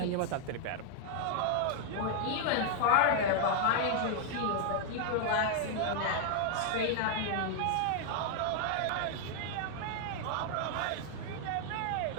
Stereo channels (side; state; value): both; different; correlation 0.00